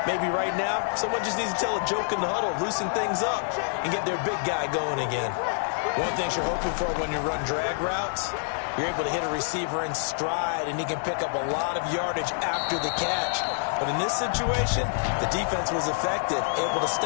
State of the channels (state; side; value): silent; right; digital silence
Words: Maybe right now, someone just needs to tell a joke in the huddle, loosen things up, and get their big guy going again. One thing you're hoping for when you run drag routes, you're able to hit a receiver in stride, and he can pick up a lot of yardage after the catch. But in this situation, the defense was effective, able to